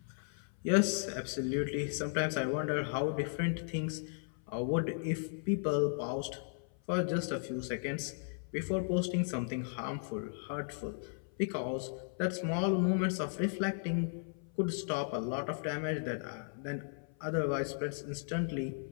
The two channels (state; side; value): silent; right; 54 dB below the other